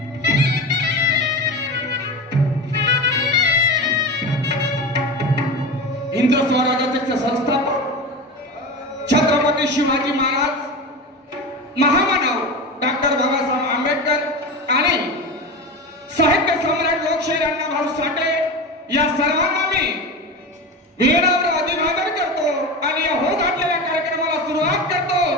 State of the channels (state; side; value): normal; both; correlation 0.26